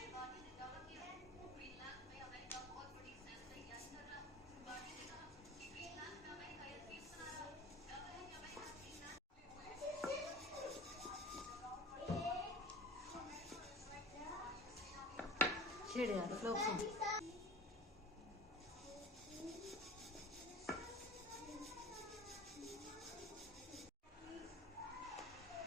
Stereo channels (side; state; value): both; normal; correlation 0.39